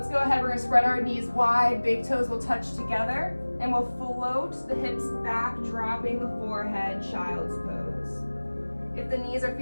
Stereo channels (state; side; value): inverted; both; correlation -1.00